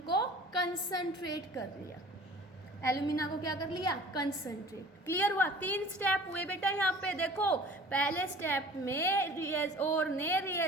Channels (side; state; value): both; normal; correlation 0.45